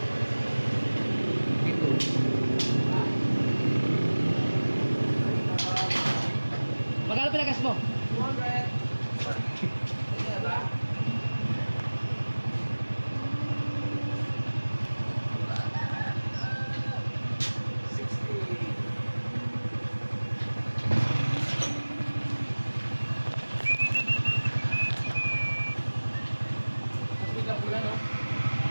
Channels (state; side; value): inverted; both; correlation -1.00